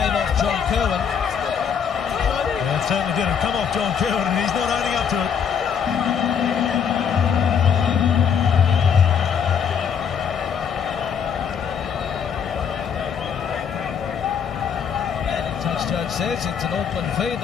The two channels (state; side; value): quieter; right; 7.3 dB